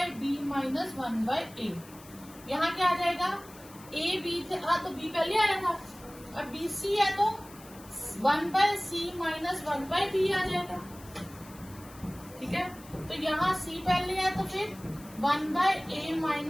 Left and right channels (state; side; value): noise; left; hiss, 21 dB below the sound